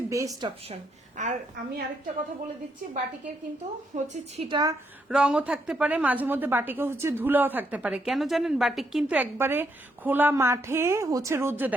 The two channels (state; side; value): normal; both; correlation 0.76